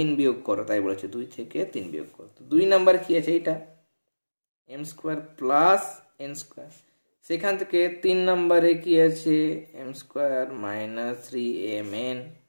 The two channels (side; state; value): both; inverted; correlation -1.00